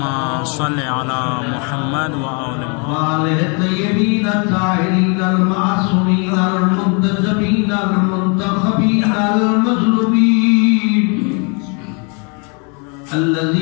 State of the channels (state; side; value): quieter; right; 35.0 dB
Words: صل على محمد وآل وآله الطيبين الطاهرين المعصومين المنتجبين المنتخبين المظلومين